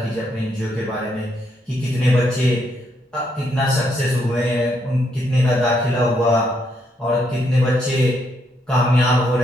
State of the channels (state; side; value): normal; both; correlation 0.75